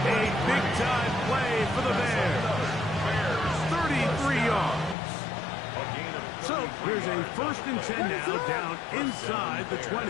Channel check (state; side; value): drops out; right; at 5.0 s